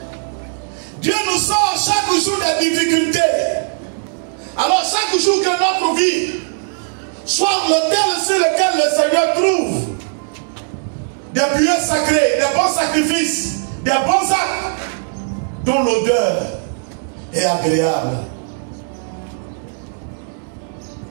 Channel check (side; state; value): left; silent; digital silence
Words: Dieu nous sort chaque jour des difficultés. Alors chaque jour que notre vie soit l'autel sur lequel le Seigneur trouve des prières sacrées, des bons sacrifices, des bons actes dont l'odeur est agréable.